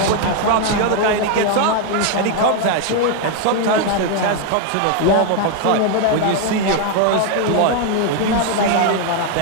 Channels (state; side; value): different; both; correlation 0.01